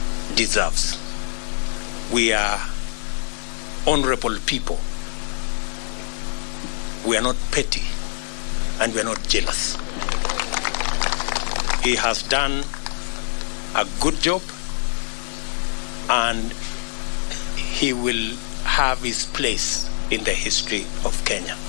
deserves. We are honorable people. We are not petty, and we are not jealous. He has done a good job, and he will have his place in the history of Kenya.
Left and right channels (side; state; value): right; silent; 59 dB below the other